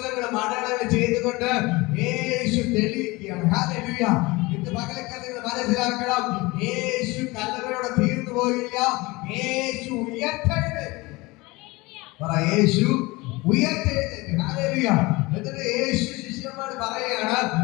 അടയാളങ്ങൾ ചെയ്തുകൊണ്ട് യേശു തെളിയിക്കുകയാണ്. ഹല്ലേലൂയ. ഇന്ന് പകലക്കാലം നിങ്ങൾ മനസ്സിലാക്കണം, യേശു കല്ലറയോടെ തീർന്നു പോയില്ല. യേശു ഉയർത്തെഴുന്നേറ്റു. യേശു ഉയർത്തെഴുന്നേറ്റു. ഹല്ലേലൂയ. എന്നിട്ട് യേശു ശിഷ്യന്മാർ പറയുകയാണ്,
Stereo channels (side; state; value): right; quieter; 22.8 dB